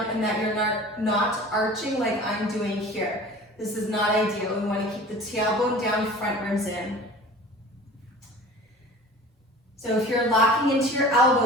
and that you're not arching like I'm doing here. This is not ideal. We want to keep the tailbone down, front ribs in. So if you're locking into your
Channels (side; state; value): both; normal; correlation 0.41